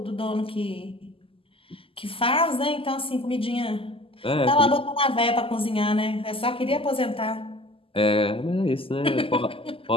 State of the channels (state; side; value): late; right; 0.26 ms